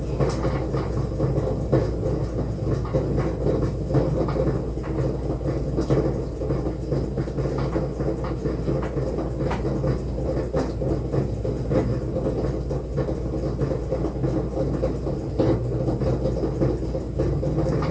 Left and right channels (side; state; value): both; identical; correlation 1.00